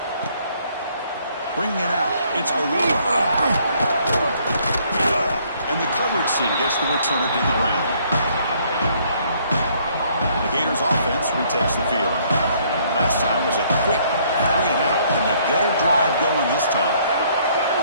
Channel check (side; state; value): both; inverted; correlation -0.64